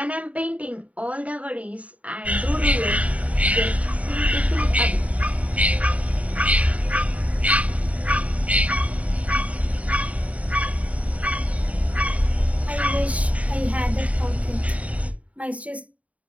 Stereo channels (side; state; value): left; late; 0.067 ms